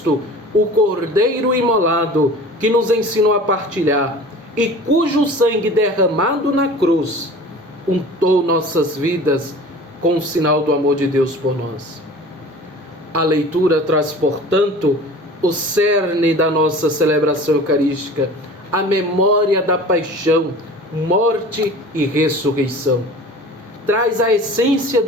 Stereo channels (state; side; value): normal; both; correlation 0.41